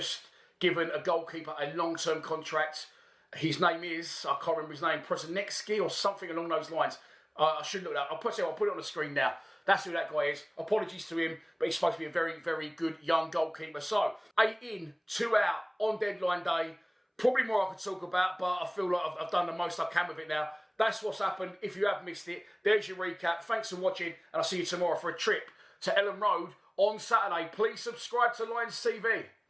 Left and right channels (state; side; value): identical; both; correlation 1.00